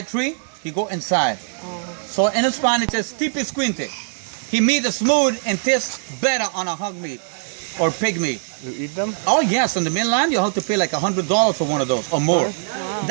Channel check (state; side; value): silent; left; digital silence